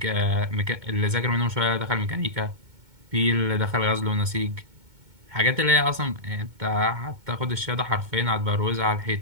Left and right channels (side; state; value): left; late; 2.2 ms